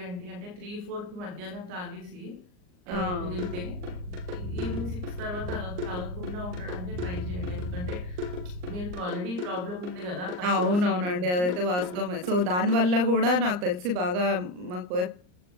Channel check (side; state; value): left; late; 39 ms